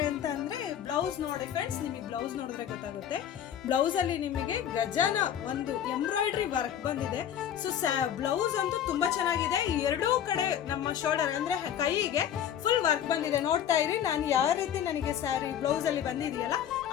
ಅಂತ ಅಂದ್ರೆ, ಬ್ಲೌಸ್ ನೋಡಿ ಫ್ರೆಂಡ್ಸ್, ನಿಮಗೆ ಬ್ಲೌಸ್ ನೋಡಿದ್ರೆ ಗೊತ್ತಾಗುತ್ತೆ. ಬ್ಲೌಸ್ ಅಲ್ಲಿ ನಿಮಗೆ ಗಜನ ಒಂದು ಎಂಬ್ರಾಯ್ಡ್ರಿ ವರ್ಕ್ ಬಂದಿದೆ. ಸೊ ಬ್ಲೌಸ್ ಅಂತೂ ತುಂಬಾ ಚೆನ್ನಾಗಿದೆ. ಎರಡೂ ಕಡೆ ನಮ್ಮ ಶೋಲ್ಡರ್ ಅಂದ್ರೆ ಕೈಗೆ ಫುಲ್ ವರ್ಕ್ ಬಂದಿದೆ. ನೋಡ್ತಾ ಇರಿ, ನಾನು ಯಾವ ರೀತಿ ನನಗೆ ಸ್ಯಾರಿ ಬ್ಲೌಸ್ ಅಲ್ಲಿ ಬಂದಿದೆಯಲ್ಲ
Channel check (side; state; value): right; quieter; 9.8 dB